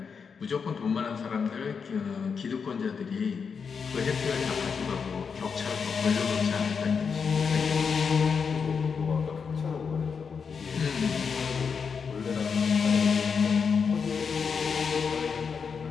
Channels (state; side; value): quieter; right; 5.9 dB